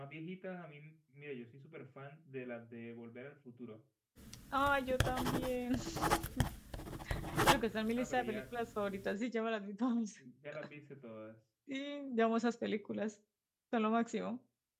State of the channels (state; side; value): identical; both; correlation 1.00